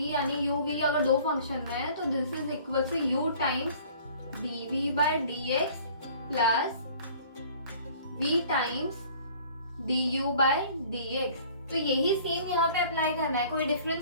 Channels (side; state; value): both; inverted; correlation -0.51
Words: यानी u v अगर दो फंक्शन है तो this is equal to u times dv by dx plus v times du by dx. तो यही same यहाँ पे apply करना है, कोई